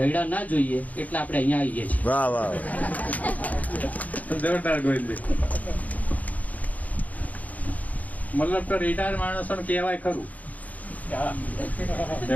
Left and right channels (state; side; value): late; right; 0.075 ms